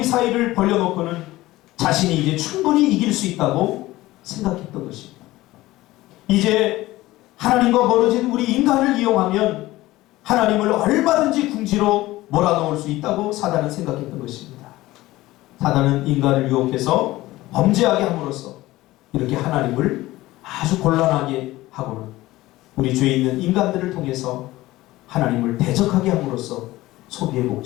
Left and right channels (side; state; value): right; quieter; 17.7 dB